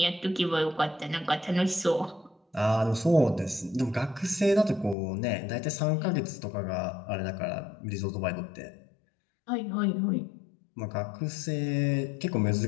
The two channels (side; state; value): right; drops out; at 5.0 s